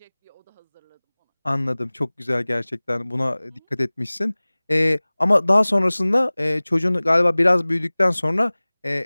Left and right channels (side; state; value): both; inverted; correlation -1.00